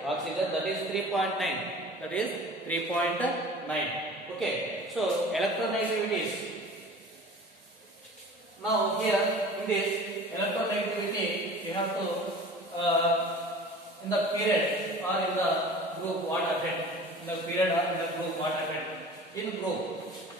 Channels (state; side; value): normal; both; correlation 0.42